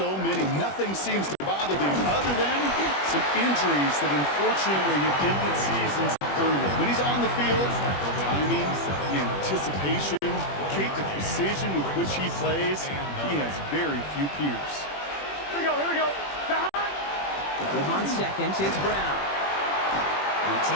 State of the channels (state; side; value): late; right; 21 ms